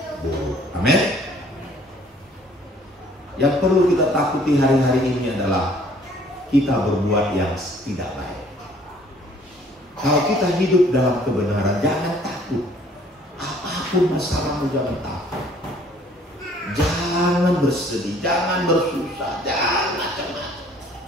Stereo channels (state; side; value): normal; both; correlation 0.57